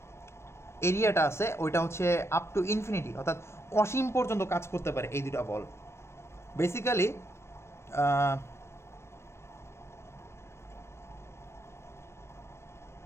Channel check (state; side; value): late; right; 0.13 ms